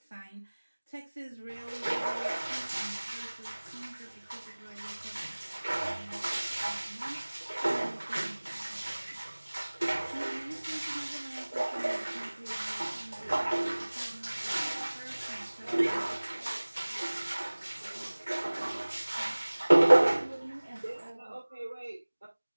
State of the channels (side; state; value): both; inverted; correlation -1.00